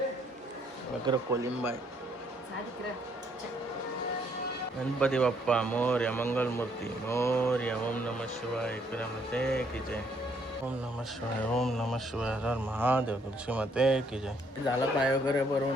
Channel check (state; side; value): normal; both; correlation 0.68